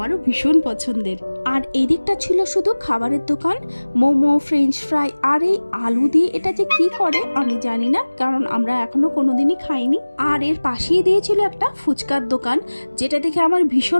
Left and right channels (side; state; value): both; inverted; correlation -1.00